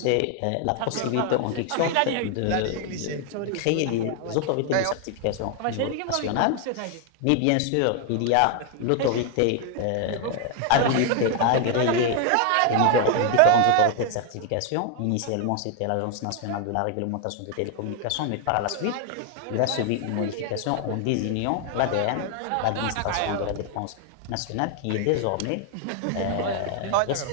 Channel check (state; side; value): different; both; correlation 0.00